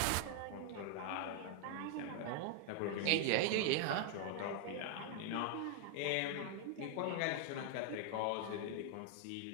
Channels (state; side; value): different; both; correlation 0.00